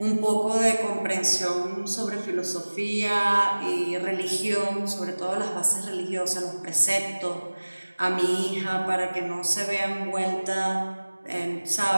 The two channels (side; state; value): both; inverted; correlation -1.00